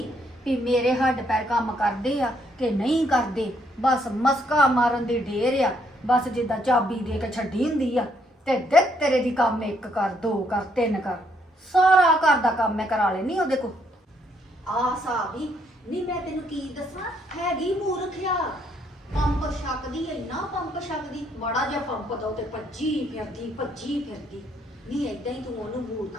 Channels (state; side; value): normal; both; correlation 0.71